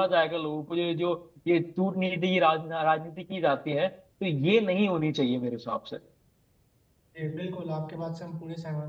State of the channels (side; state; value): both; identical; correlation 1.00